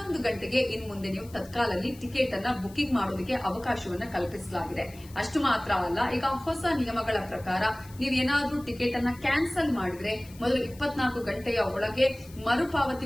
ಗಂಟೆಗೆ ಇನ್ನು ಮುಂದೆ ನೀವು ತತ್ಕಾಲಲ್ಲಿ ಟಿಕೆಟ್ ಅನ್ನ ಬುಕಿಂಗ್ ಮಾಡೋದಕ್ಕೆ ಅವಕಾಶವನ್ನ ಕಲ್ಪಿಸಲಾಗಿದೆ. ಅಷ್ಟು ಮಾತ್ರ ಅಲ್ಲ, ಈಗ ಹೊಸ ನಿಯಮಗಳ ಪ್ರಕಾರ ನೀವೇನಾದ್ರೂ ಟಿಕೆಟ್ ಅನ್ನ ಕ್ಯಾನ್ಸಲ್ ಮಾಡಿದ್ರೆ ಮೊದಲು 24 ಗಂಟೆಯ ಒಳಗೆ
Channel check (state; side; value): noise; left; hiss, 22 dB below the sound